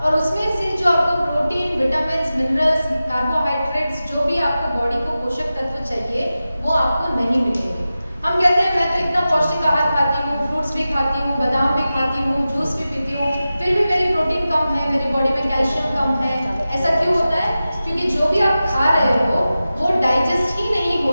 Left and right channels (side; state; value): both; inverted; correlation -0.94